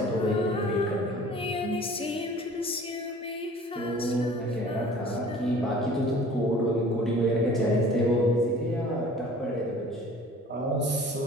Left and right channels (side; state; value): both; normal; correlation 0.47